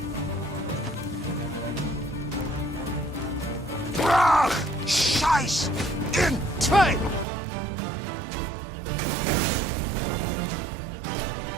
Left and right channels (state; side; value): drops out; left; at 7.2 s